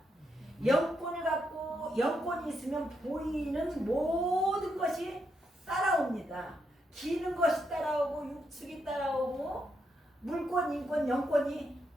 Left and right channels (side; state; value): both; normal; correlation 0.80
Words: 영권을 갖고 영권이 있으면 보이는 모든 것이 따라옵니다. 기는 것이 따라오고 육축이 따라오고 물권, 인권, 영권이